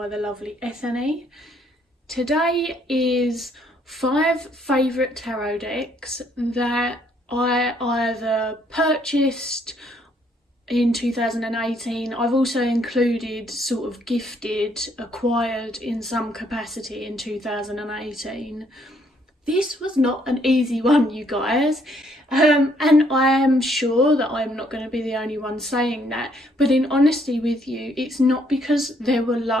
the lovely Ethony. Today is 5 favourite tarot decks that I either purchased in 2018, I've also included sort of gifted, acquired in some capacity in 2018. This was not an easy one, you guys. And I am sure that I'm not going to be the only one saying that, but in honesty with you, it's not because there were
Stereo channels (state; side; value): normal; both; correlation 0.68